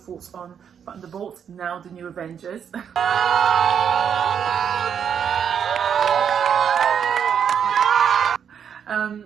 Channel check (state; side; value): quieter; left; 7.9 dB